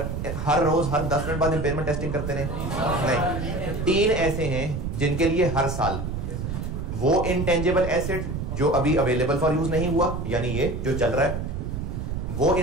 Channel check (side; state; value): right; noise; rumble, 4 dB below the sound